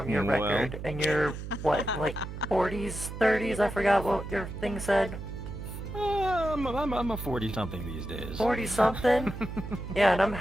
your Well. record. And you're, what, like 40s, 30s? I forgot what your thing said. I'm a 40-something these days. 40-something? Yeah, and I'm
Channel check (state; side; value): noise; right; hum, 9 dB below the sound